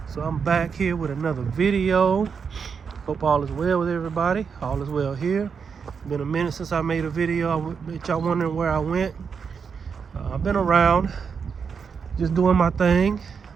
So I'm back here with another video. Hope all is well with everybody. All is well here. Been a minute since I made a video. I bet y'all wondering where I went. I've been around, just doing my thing.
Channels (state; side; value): quieter; left; 6.2 dB